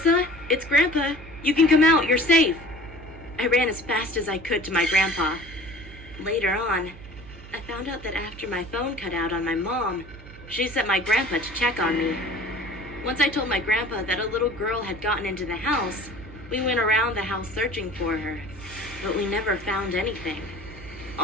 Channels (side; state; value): right; noise; hum, 17 dB below the sound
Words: it's Grandpa. You can come out, you're safe." I ran as fast as I could to my grandpa. Later on, I found out that after my phone cut out on my mom, she sent my grandpa to check on me. Once I told my grandpa that a little girl had gotten into the house, we went around the house searching for her, but we never found anything.